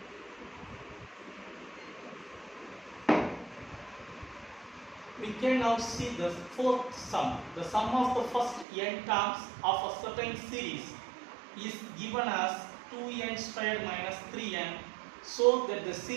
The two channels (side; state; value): left; drops out; at 8.7 s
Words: we can now see the fourth sum. The sum of the first n terms of a certain series is given as 2n squared minus 3n, so that the